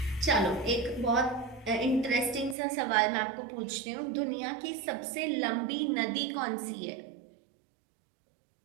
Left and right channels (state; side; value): drops out; left; at 2.6 s